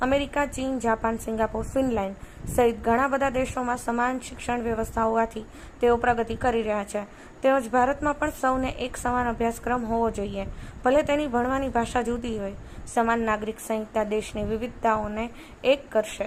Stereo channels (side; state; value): both; identical; correlation 1.00